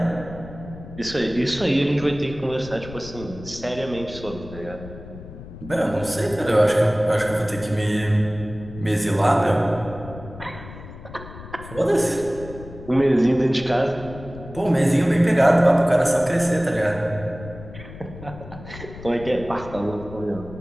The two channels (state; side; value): noise; left; rumble, 14 dB below the sound